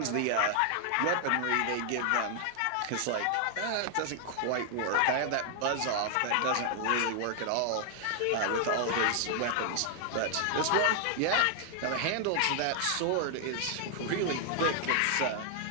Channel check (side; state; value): both; different; correlation 0.00